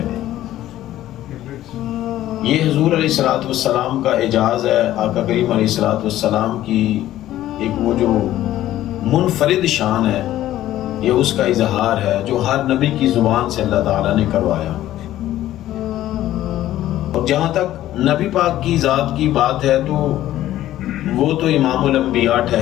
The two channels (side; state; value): right; quieter; 13.7 dB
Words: یہ حضور علیہ السلام کا اعجاز ہے، آقا کریم علیہ السلام کی ایک وہ جو منفرد شان ہے، یہ اس کا اظہار ہے جو ہر نبی کی زبان سے اللہ تعالیٰ نے کروایا۔ اور جہاں تک نبی پاک کی ذات کی بات ہے تو وہ تو امام الانبیاء